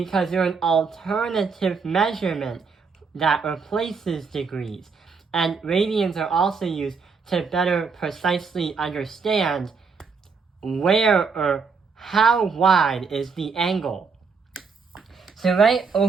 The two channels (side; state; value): left; quieter; 5.2 dB